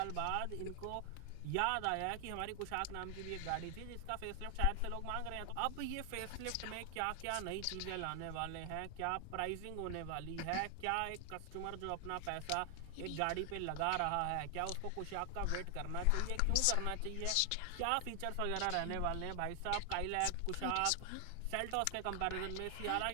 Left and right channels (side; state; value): both; different; correlation 0.00